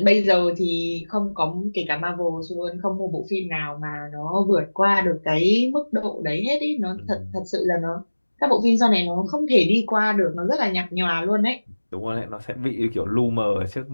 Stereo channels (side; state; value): both; inverted; correlation -1.00